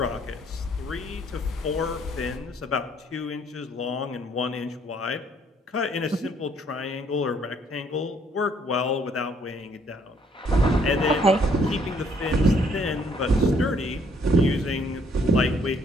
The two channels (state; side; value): normal; both; correlation 0.65